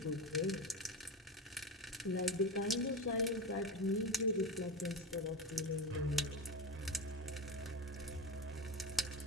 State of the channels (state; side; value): normal; both; correlation 0.21